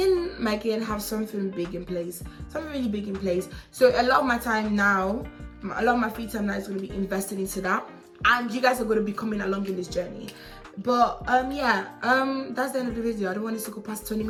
and Megan have something big in place. Something really big in place. So a lot of my time now, a lot of my free time now is going to be invested into that. And you guys are going to be coming along in this journey. But yeah, that's the end of the video. I don't want this to go past 20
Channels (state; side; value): identical; both; correlation 1.00